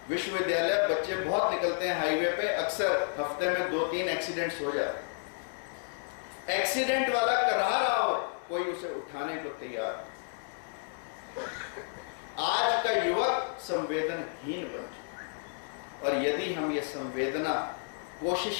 विश्वविद्यालय बच्चे बहुत निकलते हैं हाईवे पे, अक्सर हफ्ते में 2-3 एक्सीडेंट्स हो जाते हैं। एक्सीडेंट वाला करा रहा हो, कोई उसे उठाने को तैयार। आज का युवक संवेदनहीन बन चुका, और यदि हम ये संवेदना कोशिश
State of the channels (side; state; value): right; silent; digital silence